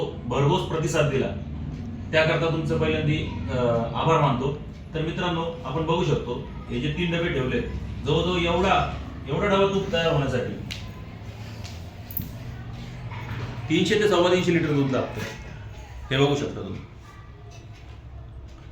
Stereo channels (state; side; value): identical; both; correlation 1.00